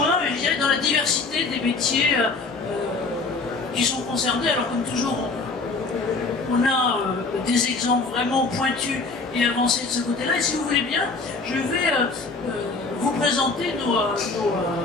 je dirais, dans la diversité des métiers qui sont concernés. Alors, comme toujours, on a des exemples vraiment pointus et avancés de ce côté-là. Et si vous voulez bien, je vais vous présenter nos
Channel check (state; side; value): quieter; right; 3.9 dB